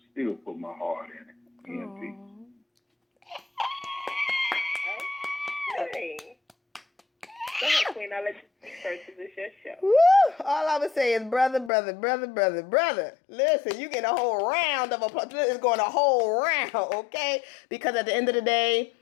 still put my heart in it? EMP. Okay. Go ahead, Queen. I'll let you speak first because it's your show. Woo! All I would say is brother. Listen, you get a whole round of applause. It's going a whole round, okay? Because at the end of the day,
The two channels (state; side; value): drops out; right; at 11.7 s